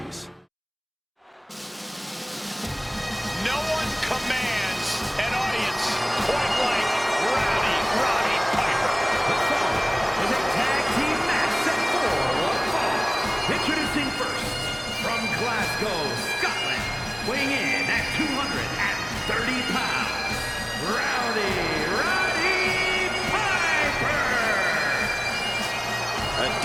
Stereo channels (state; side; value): identical; both; correlation 1.00